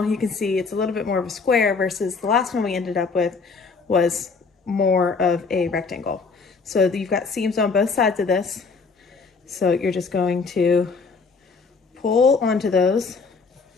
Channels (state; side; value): quieter; right; 4.7 dB